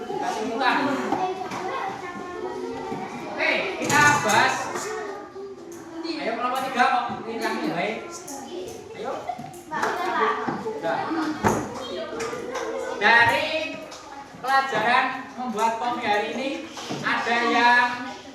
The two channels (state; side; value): identical; both; correlation 1.00